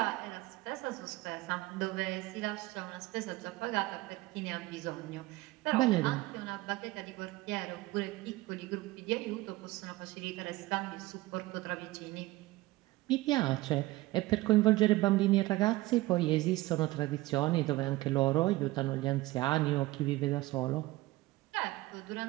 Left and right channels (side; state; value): left; quieter; 19.0 dB